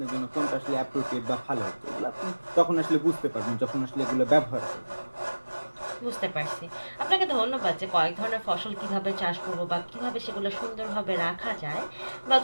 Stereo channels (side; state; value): both; inverted; correlation -1.00